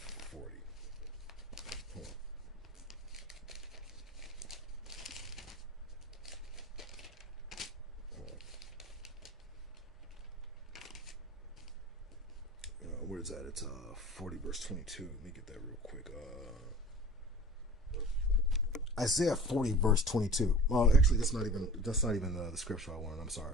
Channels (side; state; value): both; normal; correlation 0.41